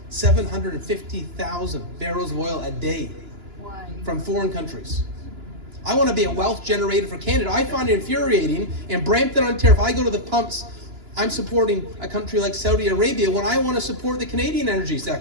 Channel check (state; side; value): late; left; 2.9 ms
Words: 750,000 barrels of oil a day from foreign countries? I want to be a wealth generator for Canada. I find it infuriating in Brampton, Ontario. If I go to the pumps, I'm supporting a country like Saudi Arabia when I want to support the Canadian energy